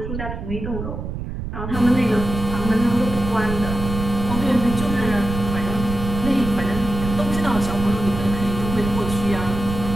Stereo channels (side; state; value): right; noise; rumble, 6 dB below the sound